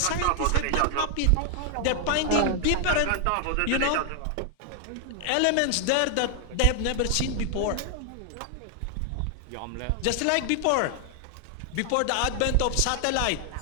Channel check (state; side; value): different; both; correlation 0.00